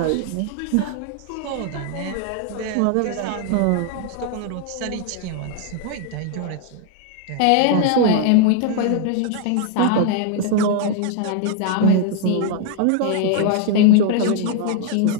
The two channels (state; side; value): different; both; correlation 0.00